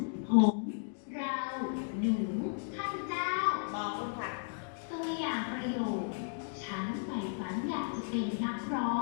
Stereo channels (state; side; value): silent; right; digital silence